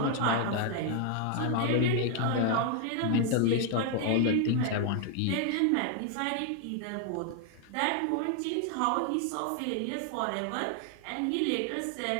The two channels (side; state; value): both; different; correlation 0.00